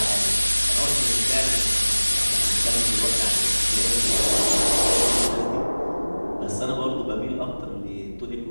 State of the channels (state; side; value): inverted; both; correlation -1.00